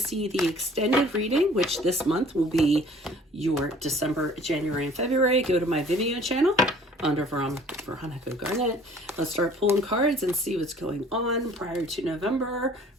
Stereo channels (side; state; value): both; normal; correlation 0.52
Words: the extended reading, which this month will be your December, January, and February, go to my Vimeo channel under Veronica Garnett. Let's start pulling cards and see what's going on. Prior to November,